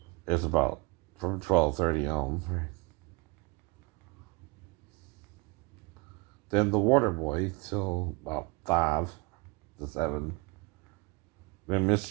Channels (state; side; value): quieter; left; 26.0 dB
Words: It's about from 12:30 on. Right? Then The Waterboy till about 5 to 7. Then